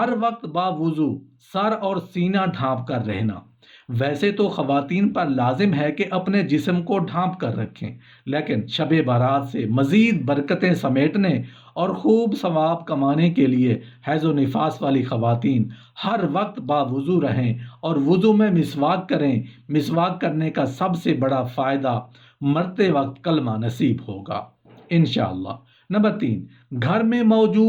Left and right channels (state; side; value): identical; both; correlation 1.00